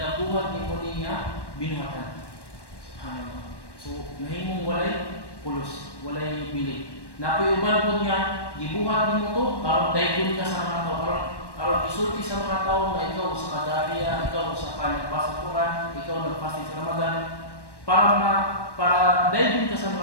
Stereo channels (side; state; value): right; late; 1.1 ms